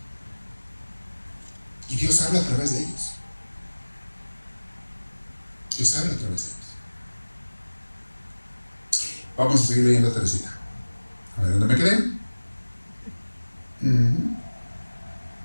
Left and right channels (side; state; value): both; inverted; correlation -1.00